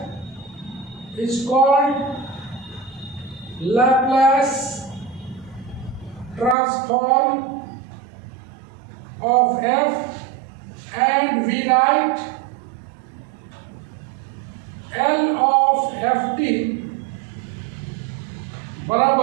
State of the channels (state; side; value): drops out; left; at 6.6 s